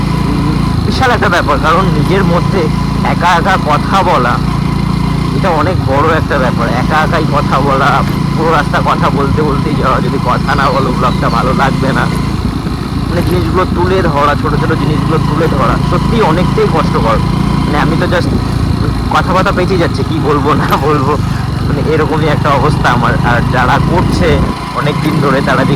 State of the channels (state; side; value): identical; both; correlation 1.00